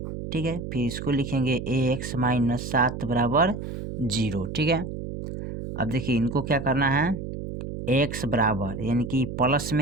ठीक है, फिर इसको लिखेंगे एक्स माइनस 7 बराबर 0। ठीक है, अब देखिए इनको क्या करना है, एक्स बराबर यानी कि प्लस में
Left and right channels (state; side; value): noise; right; hum, 7 dB below the sound